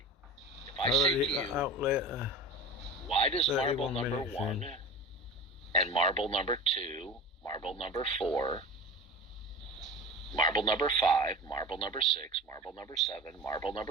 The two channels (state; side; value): normal; both; correlation 0.32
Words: If I say to you, why does marble number 1 and marble number 2, marble number 4, marble number 5, marble number 6, marble number 7, marble